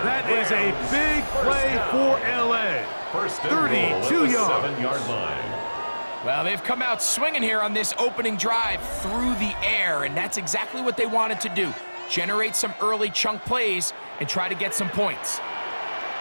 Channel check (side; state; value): both; inverted; correlation -1.00